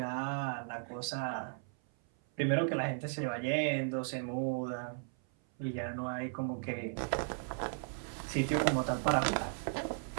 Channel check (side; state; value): left; silent; 54 dB below the other